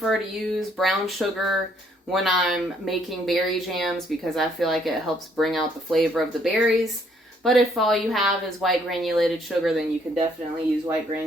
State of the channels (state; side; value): normal; both; correlation 0.67